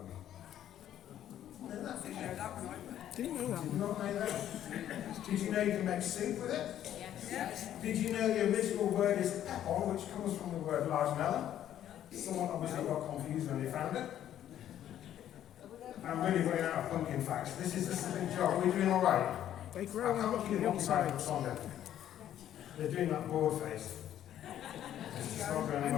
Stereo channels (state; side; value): quieter; right; 11.2 dB